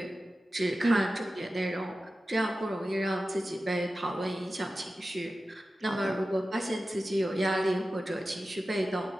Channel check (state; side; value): normal; both; correlation 0.94